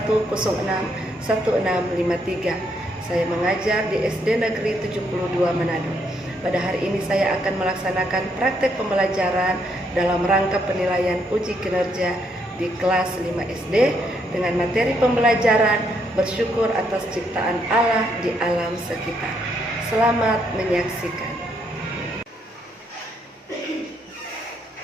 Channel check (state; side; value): normal; both; correlation 0.74